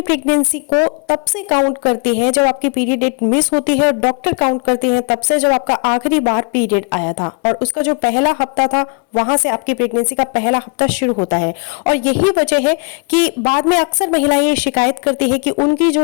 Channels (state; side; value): quieter; right; 35.3 dB